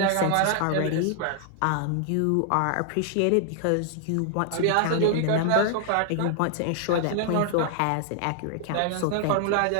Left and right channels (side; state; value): both; different; correlation 0.00